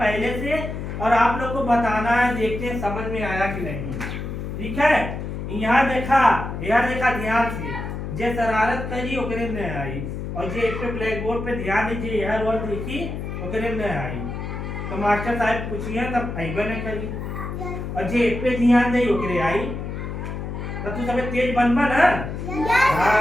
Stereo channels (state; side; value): noise; left; hum, 6 dB below the sound